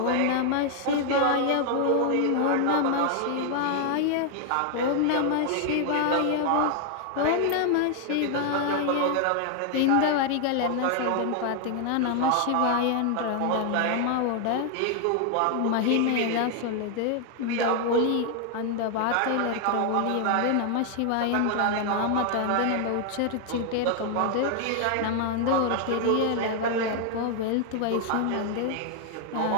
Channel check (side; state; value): both; different; correlation 0.00